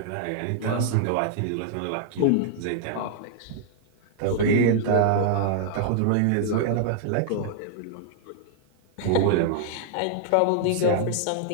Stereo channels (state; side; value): different; both; correlation -0.01